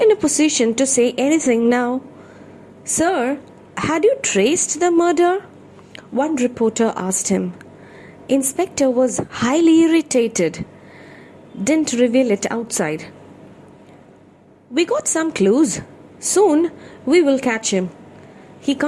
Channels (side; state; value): both; identical; correlation 1.00